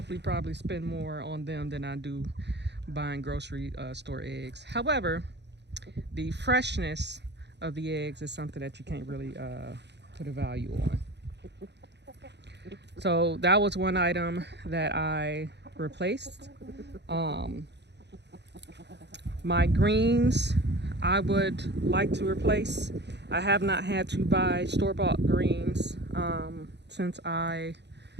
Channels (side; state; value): left; late; 0.50 ms